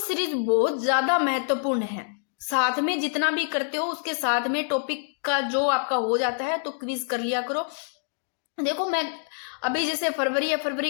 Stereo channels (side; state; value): right; silent; digital silence